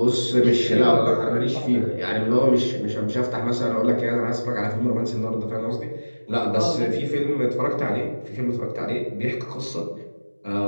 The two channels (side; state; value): both; inverted; correlation -1.00